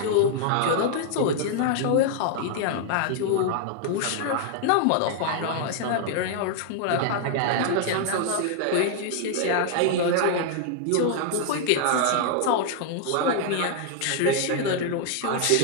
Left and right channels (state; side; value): different; both; correlation 0.00